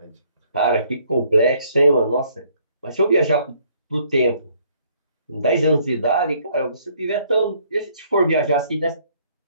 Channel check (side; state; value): both; inverted; correlation -0.64